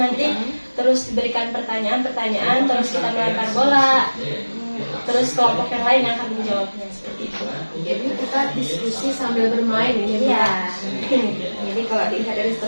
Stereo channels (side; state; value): both; inverted; correlation -1.00